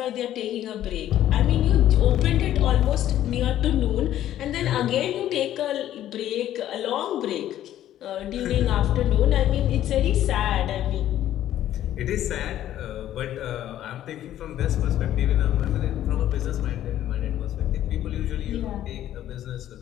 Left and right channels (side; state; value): right; quieter; 12.3 dB